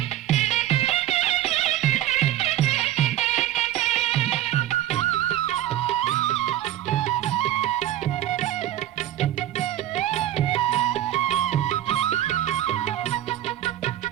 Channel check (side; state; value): left; quieter; 12.9 dB